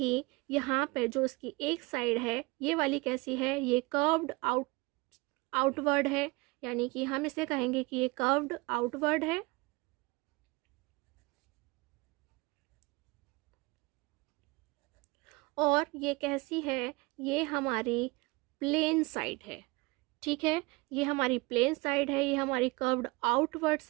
यहाँ पे जो इसकी एक साइड है ये वाली कैसी है, ये कर्व्ड आउटवर्ड है, यानी कि हम इसे कहेंगे कि ये कर्व्ड आउटवर्ड है। और ये कैसी है, ये हमारी प्लेन साइड है, ठीक है, ये हमारी प्लेन साइड है, ये हमारी कर्व्ड आउटवर्ड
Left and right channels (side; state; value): left; quieter; 24.8 dB